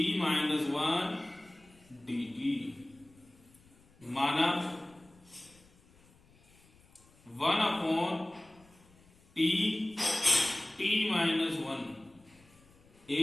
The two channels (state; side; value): noise; left; rumble, 28 dB below the sound